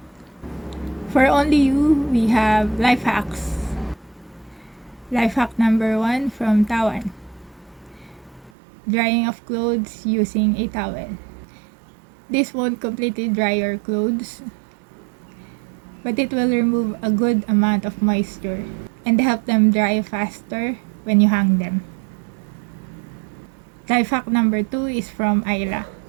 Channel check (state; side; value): drops out; left; at 8.5 s